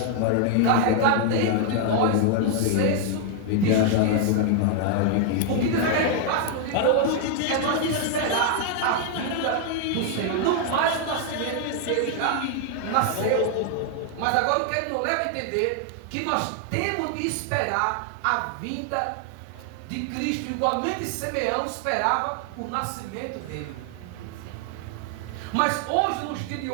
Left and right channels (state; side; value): different; both; correlation 0.00